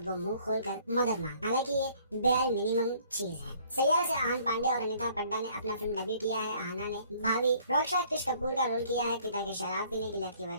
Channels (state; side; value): inverted; both; correlation -0.59